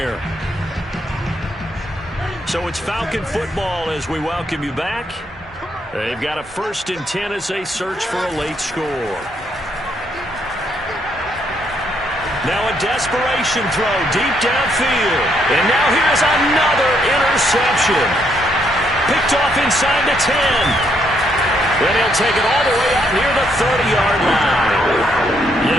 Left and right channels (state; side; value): normal; both; correlation 0.73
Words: So it's Falcon football as we welcome you back. They've got a 1st and 10 as they search for a late score. Now a desperation throw deep downfield. And now here's another interception. Picked off inside the 10. Then he'll take it all the way up near the 30-yard line.